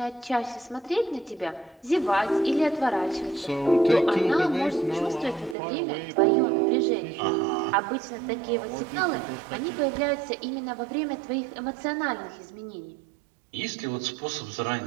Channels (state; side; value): drops out; left; at 5.6 s